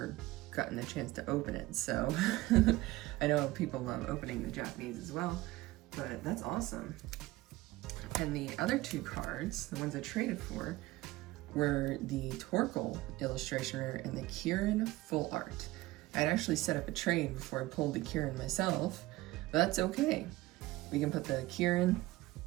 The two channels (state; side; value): quieter; left; 18.6 dB